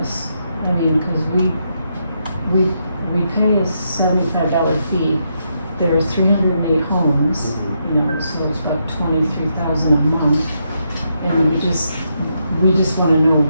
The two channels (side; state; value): both; inverted; correlation -0.80